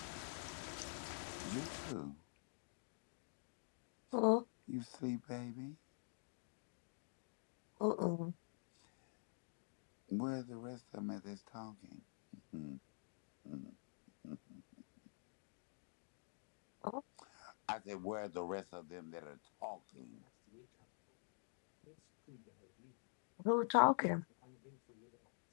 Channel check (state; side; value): silent; right; digital silence